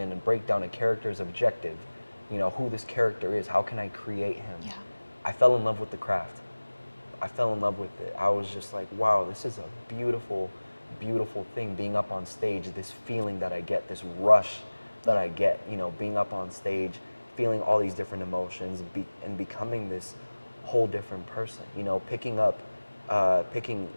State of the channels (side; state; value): both; inverted; correlation -1.00